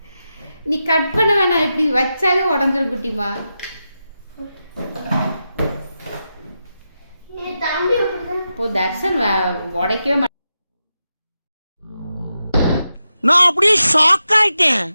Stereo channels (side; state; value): both; inverted; correlation -0.89